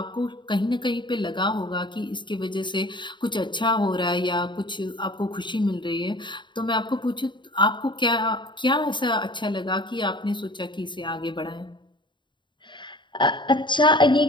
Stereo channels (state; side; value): late; right; 0.23 ms